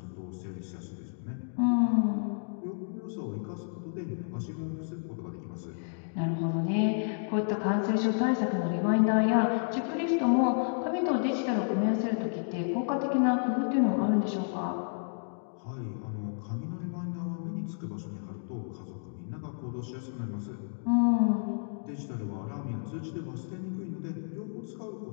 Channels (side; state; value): right; silent; digital silence